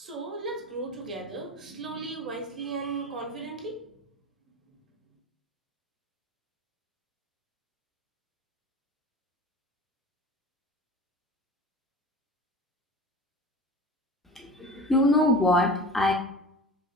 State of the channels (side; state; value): both; normal; correlation 0.35